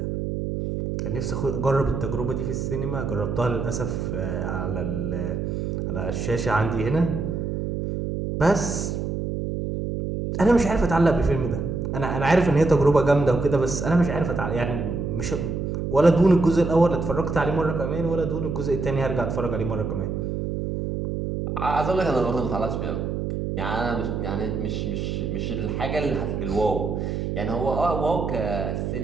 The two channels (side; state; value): right; noise; hum, 2 dB below the sound